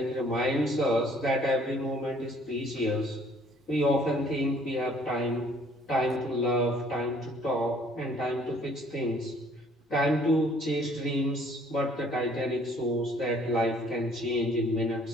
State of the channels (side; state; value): both; normal; correlation 0.59